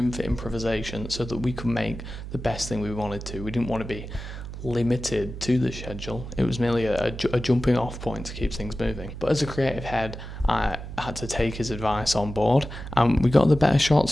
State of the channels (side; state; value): right; noise; hum, 10 dB below the sound